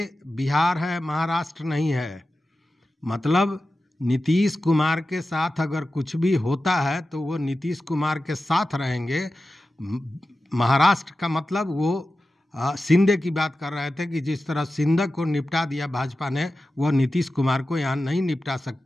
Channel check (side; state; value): both; normal; correlation 0.93